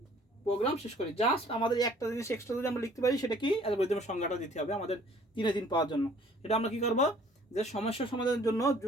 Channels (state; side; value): normal; both; correlation 0.56